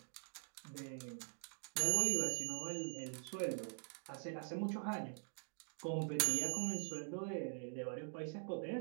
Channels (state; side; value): silent; left; digital silence